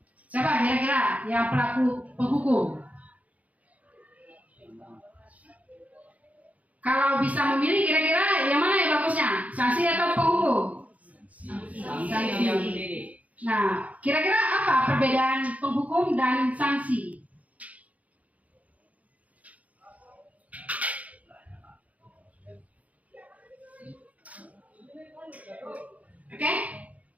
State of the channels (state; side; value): late; left; 0.070 ms